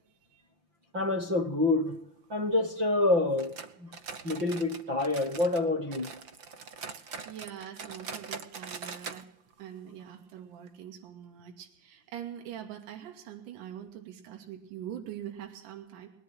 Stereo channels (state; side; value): late; left; 5.8 ms